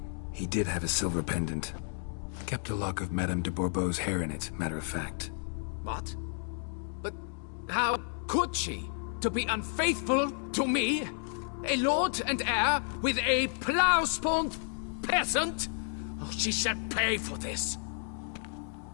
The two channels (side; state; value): right; silent; 57 dB below the other